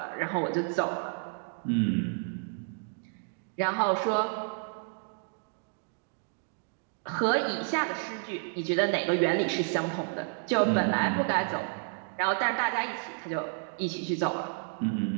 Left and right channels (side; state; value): left; silent; 57 dB below the other